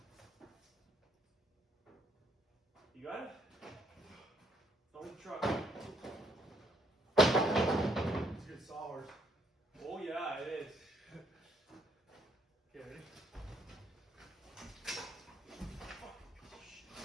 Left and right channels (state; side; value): normal; both; correlation 0.69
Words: You got it? On the truck. It's a good sawhorse. Oh yeah, it is. Okay, ready?